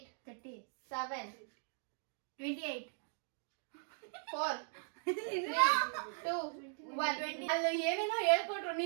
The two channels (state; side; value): silent; left; digital silence